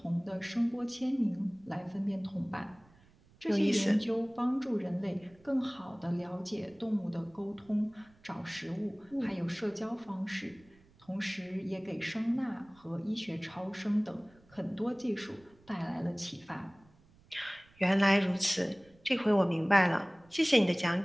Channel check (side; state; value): right; noise; rumble, 29 dB below the sound